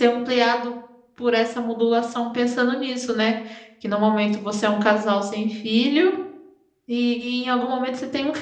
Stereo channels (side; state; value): both; identical; correlation 1.00